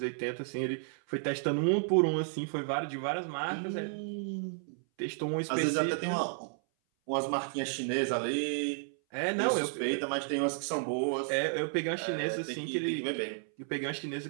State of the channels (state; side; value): silent; left; 56 dB below the other